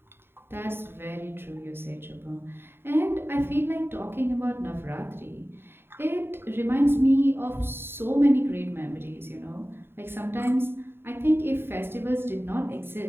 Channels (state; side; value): late; left; 0.11 ms